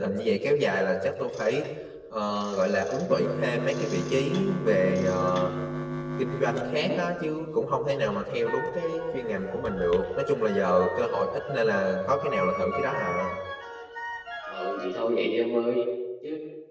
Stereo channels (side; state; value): both; identical; correlation 1.00